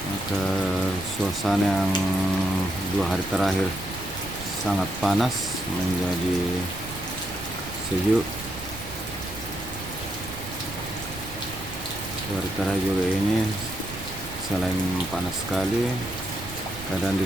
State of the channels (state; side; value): noise; right; rumble, 13 dB below the sound